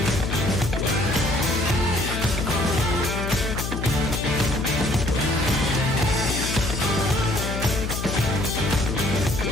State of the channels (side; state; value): left; noise; hum, 4 dB below the sound